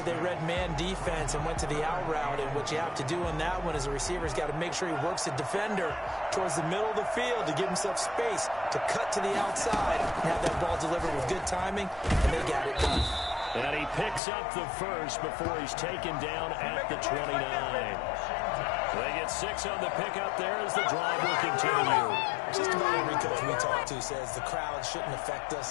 they read man defense and went to the out route, and what you have to do on that one is the receiver's got to make sure he works the defender towards the middle of the field to give himself space to cut to the outside and have that ball delivered with good timing, and they got it done. And he picks up the first before he's taken down at the 29. They get 6 on the pickup there as the drive will continue. Just about every coach we talk to says the crowd shouldn't affect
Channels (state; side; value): drops out; right; at 14.2 s